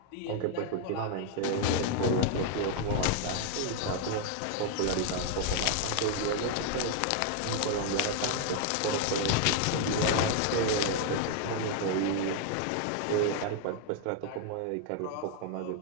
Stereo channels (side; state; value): both; different; correlation 0.00